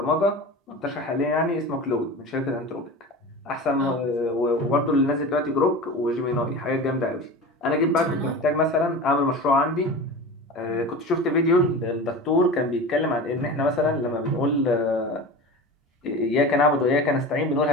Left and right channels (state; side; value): normal; both; correlation 0.31